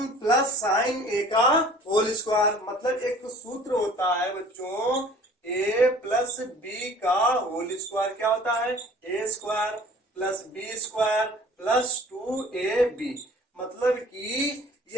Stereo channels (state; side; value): normal; both; correlation 0.49